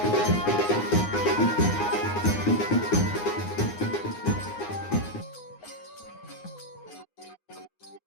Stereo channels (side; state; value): right; late; 9.6 ms